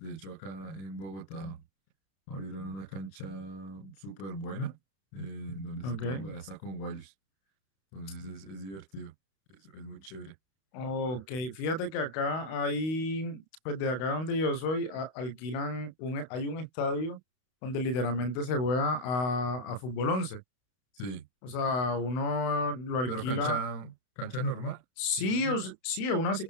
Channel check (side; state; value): right; late; 31 ms